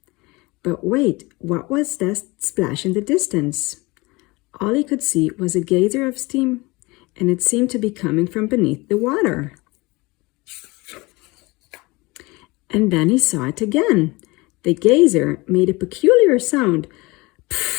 But wait, what was that splash in the distance? All he could see was a geyser of steam, and it seemed to be coming from beneath the water. And then he saw it again. The geyser made a peculiar sound.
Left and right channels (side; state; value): right; quieter; 23.7 dB